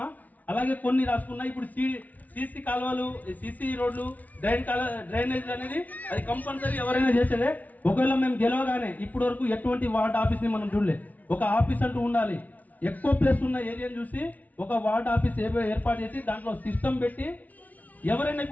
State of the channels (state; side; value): late; right; 0.074 ms